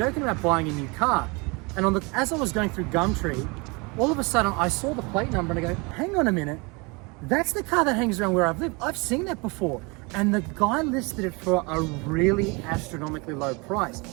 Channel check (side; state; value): left; quieter; 28.2 dB